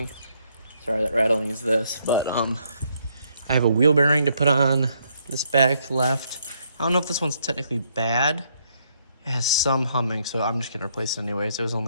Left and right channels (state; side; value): inverted; both; correlation -0.72